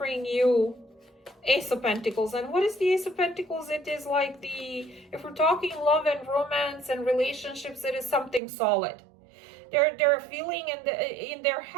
you Ace of Pentacles. And what is the Ace of Pentacles? It is like if we're talking love and romance and relationships, it is something solid. They're feeling in their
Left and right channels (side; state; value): left; drops out; at 8.4 s